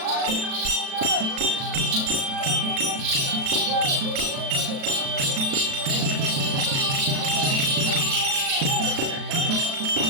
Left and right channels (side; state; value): left; late; 36 ms